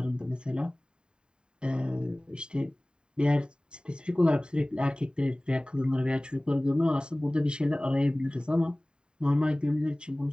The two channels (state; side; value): late; left; 0.049 ms